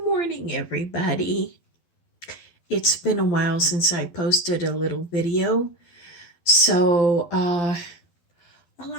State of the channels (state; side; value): late; right; 12 ms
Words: everybody. It's been a while since I posted a little video, so a